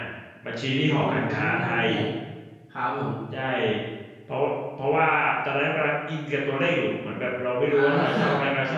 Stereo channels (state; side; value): identical; both; correlation 1.00